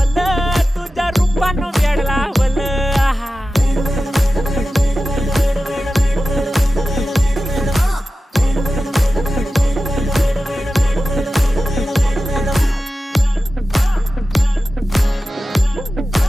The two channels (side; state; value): both; normal; correlation 0.94